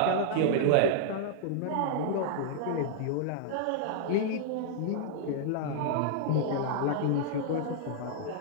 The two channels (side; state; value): both; different; correlation -0.01